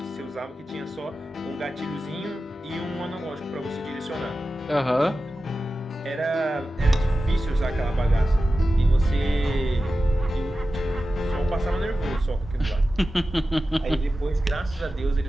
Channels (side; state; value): both; normal; correlation 0.93